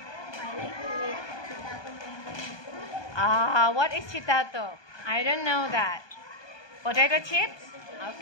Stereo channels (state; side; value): late; right; 1.2 ms